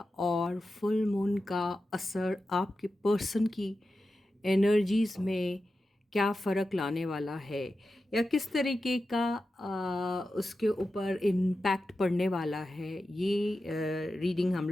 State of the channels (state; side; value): normal; both; correlation 0.92